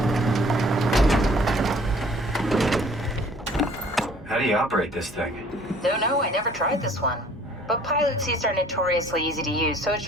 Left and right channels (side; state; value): both; normal; correlation 0.55